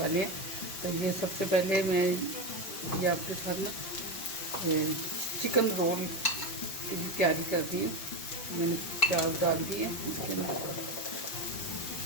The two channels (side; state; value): right; late; 5.6 ms